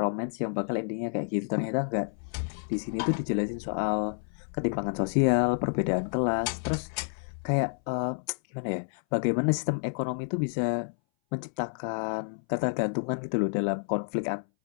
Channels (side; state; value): right; silent; 58 dB below the other